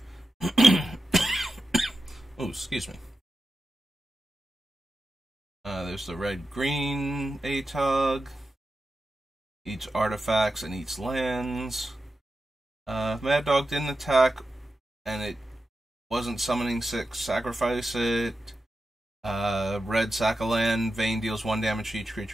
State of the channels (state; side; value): normal; both; correlation 0.91